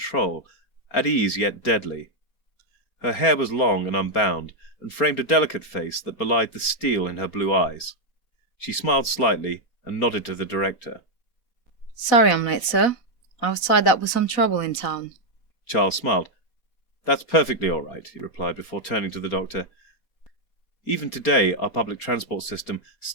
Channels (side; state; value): right; late; 4.3 ms